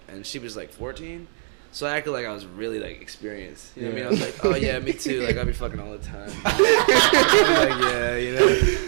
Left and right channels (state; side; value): silent; left; digital silence